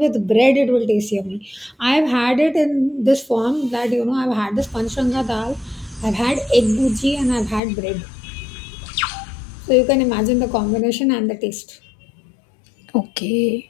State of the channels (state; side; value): drops out; right; at 7.6 s